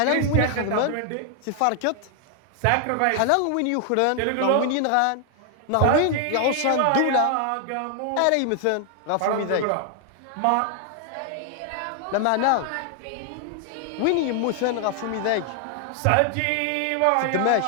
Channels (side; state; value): both; different; correlation 0.00